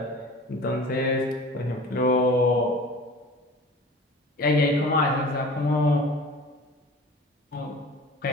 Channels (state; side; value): normal; both; correlation 0.41